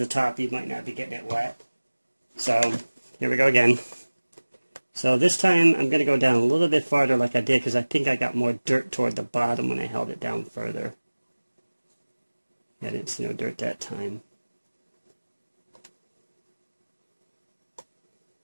top, you might not be getting it wet. So, here we go again. So this time, I'm going to go down a little bit farther like I did, because I think I got more dirt toward the bottom when I held it down further. I didn't see no dirt that time.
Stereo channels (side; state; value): both; inverted; correlation -1.00